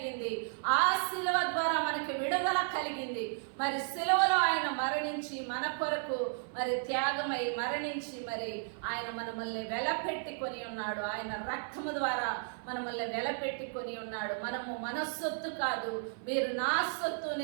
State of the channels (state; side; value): silent; left; 55 dB below the other